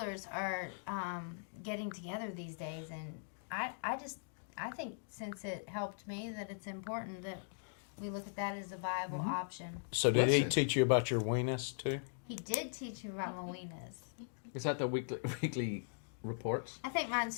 are getting together these days, and I think since it helped me that it's important that we look at that as a viable option. So did he Listen. teach you about your weenus too? He did teach me about my weenus. Is that the weekly reports? I think mine's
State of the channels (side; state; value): right; silent; digital silence